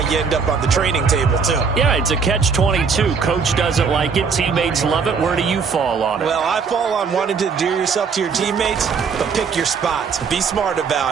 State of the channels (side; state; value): left; quieter; 5.6 dB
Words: you end up on the training table, too. Yeah, it's a catch-22. Coach doesn't like it. Teammates love it. Where do you fall on it? Well, I fall on wanting to endear yourself to your teammates, but pick your spots. Be smart